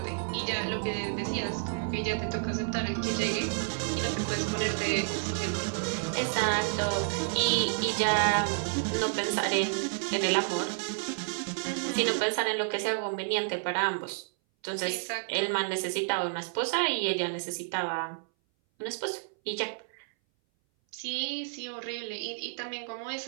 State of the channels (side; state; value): left; silent; 58 dB below the other